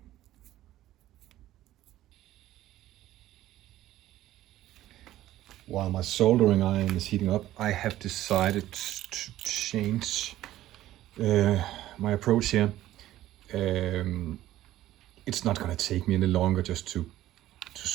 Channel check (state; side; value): quieter; left; 14.3 dB